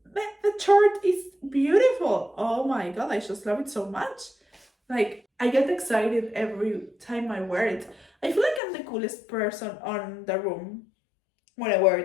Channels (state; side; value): drops out; right; at 8.6 s